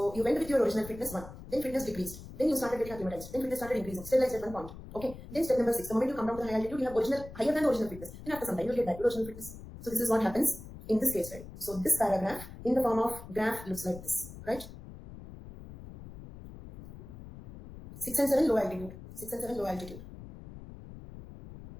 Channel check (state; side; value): noise; left; rumble, 14 dB below the sound